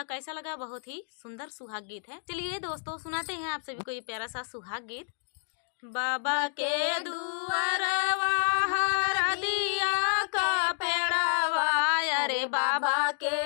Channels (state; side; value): silent; right; digital silence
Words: कैसा लगा। बहुत ही सुंदर सुहाग गीत है। चलिए दोस्तों सुनाते हैं आप सभी को ये प्यारा सा सुहाग गीत। बाबा के दुआरवा हरदिया का पेड़वा, अरे बाबा